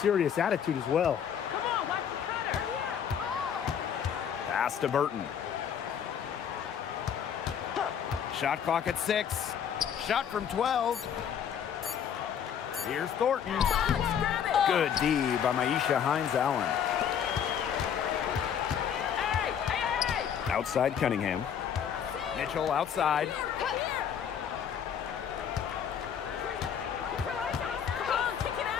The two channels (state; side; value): quieter; right; 8.3 dB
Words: attitude as well. Pass to Burton. Shot clock at 6. Shot from 12. Here's Thornton. Good D by Maisha Hines-Allen. Outside Cunningham. Mitchell outside.